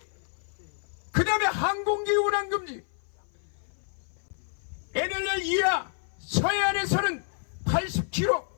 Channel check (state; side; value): silent; right; 57 dB below the other